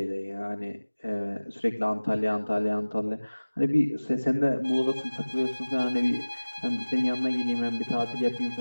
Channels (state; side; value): inverted; both; correlation -1.00